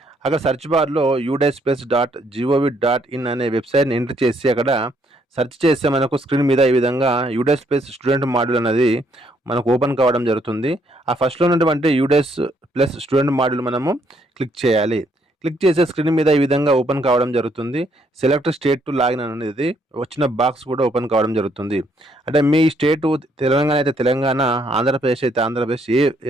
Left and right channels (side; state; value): both; normal; correlation 0.70